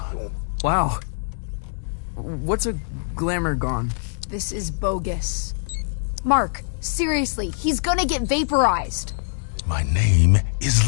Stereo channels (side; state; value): right; silent; digital silence